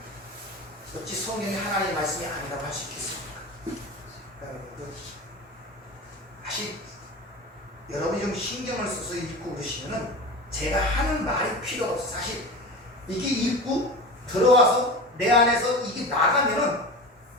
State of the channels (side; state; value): both; normal; correlation 0.30